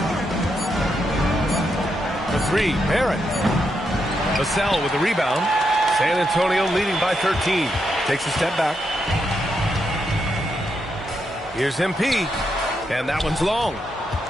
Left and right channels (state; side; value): normal; both; correlation 0.82